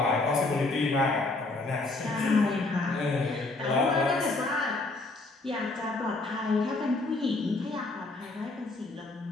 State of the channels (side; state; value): right; quieter; 3.2 dB